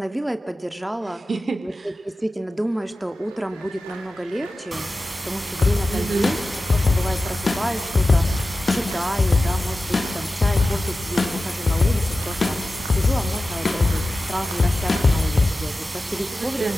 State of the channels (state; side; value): normal; both; correlation 0.94